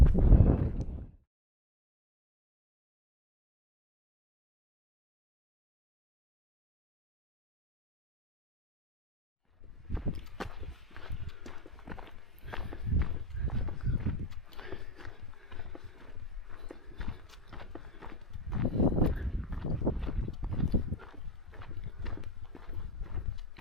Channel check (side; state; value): both; normal; correlation 0.58